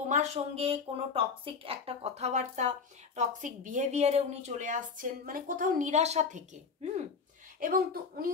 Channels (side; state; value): right; quieter; 5.3 dB